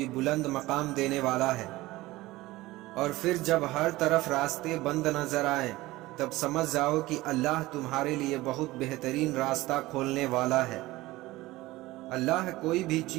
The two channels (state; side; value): quieter; left; 18.7 dB